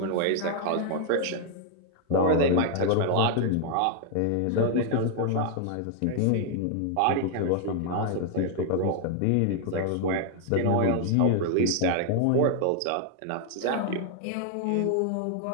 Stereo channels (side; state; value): both; different; correlation 0.00